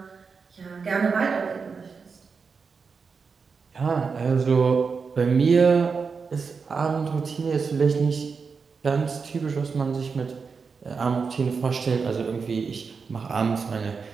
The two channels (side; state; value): left; quieter; 5.3 dB